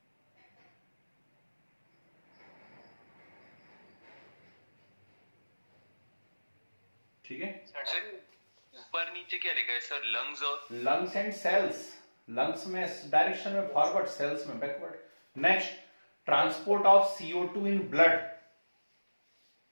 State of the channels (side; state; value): both; inverted; correlation -1.00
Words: ठीक है। सर ऊपर नीचे क्या लिखा है सर, लंग्स और लंग्स एंड सेल्स, लंग्स में डायरेक्शन में फॉरवर्ड, सेल्स में backward. Next, transport of CO2 in blood,